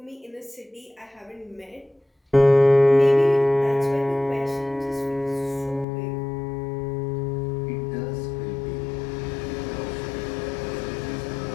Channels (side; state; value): right; drops out; at 5.9 s